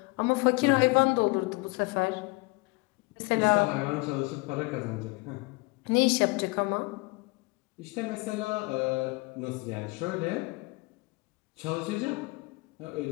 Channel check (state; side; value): quieter; right; 26.2 dB